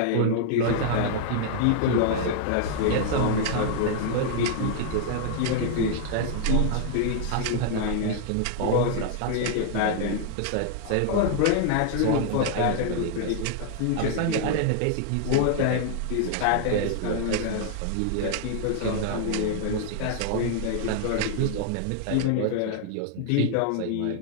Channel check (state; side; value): different; both; correlation -0.01